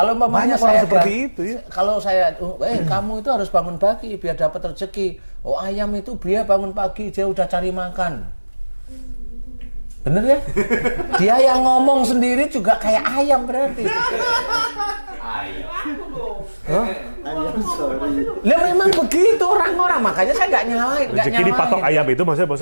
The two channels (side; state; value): both; inverted; correlation -1.00